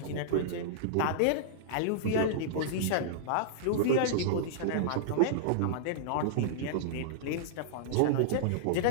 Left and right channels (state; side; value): different; both; correlation -0.02